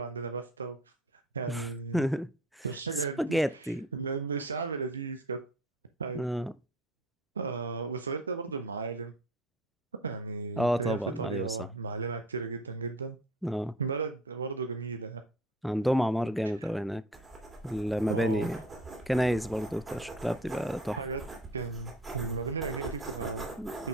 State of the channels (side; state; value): both; normal; correlation 0.44